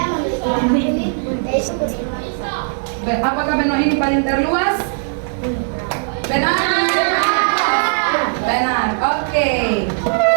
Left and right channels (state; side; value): silent; left; 67 dB below the other